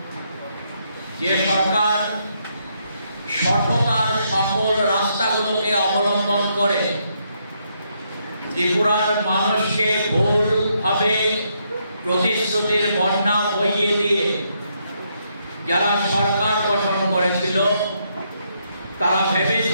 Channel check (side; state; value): both; inverted; correlation -0.76